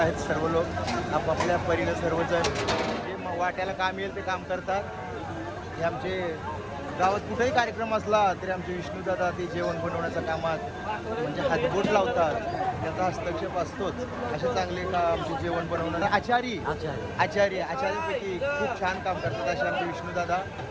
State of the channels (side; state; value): both; identical; correlation 1.00